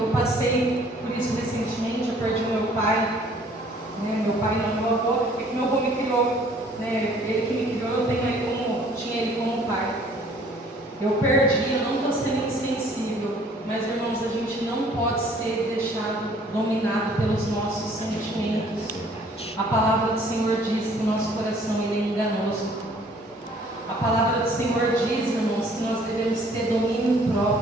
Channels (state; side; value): normal; both; correlation 0.57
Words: Eu passei por isso recentemente. Eu perdi o meu pai, meu pai não, meu avô, porque meu avô me criou, ele que me criou, tinha ele como pai. Eu perdi, eu não estou sendo insensível, mas irmãos, a gente não pode ser deixado dominado pelos nossos sentimentos. A palavra do Senhor diz que o nosso coração ele é enganoso. A palavra do Senhor diz, irmãos, que nós devemos ter domínio